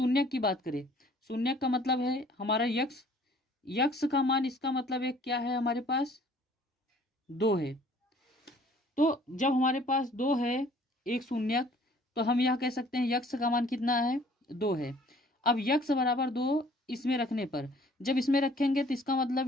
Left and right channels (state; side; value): normal; both; correlation 0.56